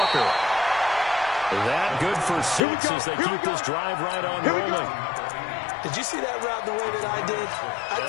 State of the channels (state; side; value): drops out; right; at 2.6 s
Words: That good for 6 as they keep this drive right on rolling. Did you see that route the way that I did? I